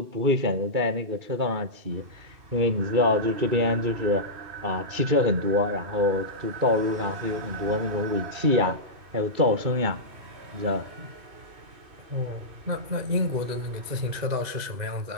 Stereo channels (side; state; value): left; late; 2.6 ms